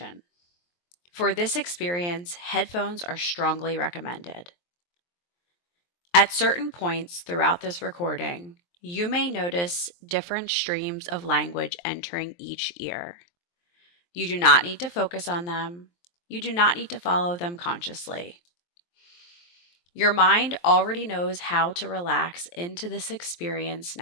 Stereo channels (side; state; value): right; late; 23 ms